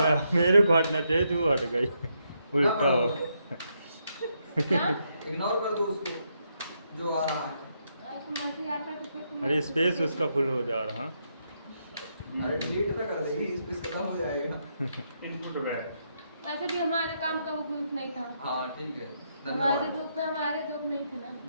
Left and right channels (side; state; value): both; inverted; correlation -0.79